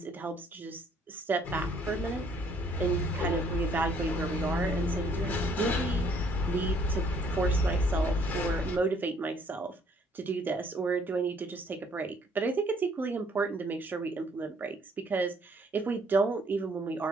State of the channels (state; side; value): normal; both; correlation 0.63